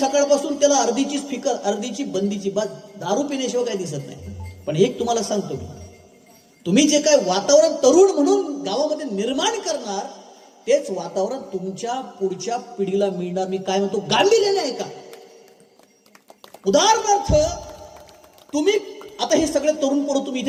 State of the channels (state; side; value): identical; both; correlation 1.00